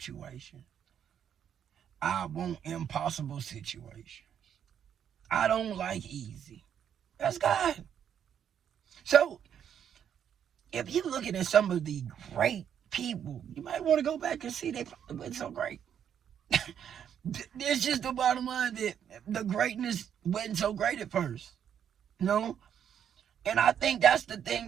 I want impossible situations. I don't like easy. That's God. So, if you're looking at some of the great people, you might want to go back and see they probably wasn't so great. It's just the bottom line that the greatness wasn't so great at first. You know? And I think that's the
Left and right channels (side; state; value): left; quieter; 8.9 dB